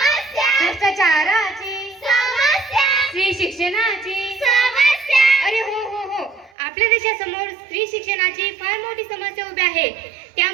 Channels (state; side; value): drops out; left; at 6.5 s